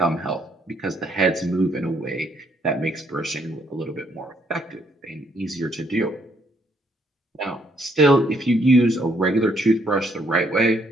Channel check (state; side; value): normal; both; correlation 0.70